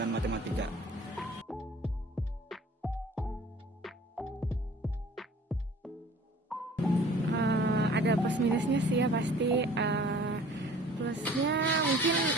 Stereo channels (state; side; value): normal; both; correlation 0.48